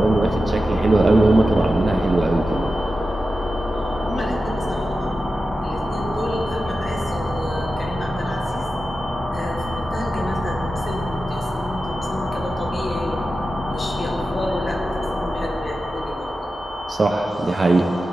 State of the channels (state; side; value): normal; both; correlation 0.92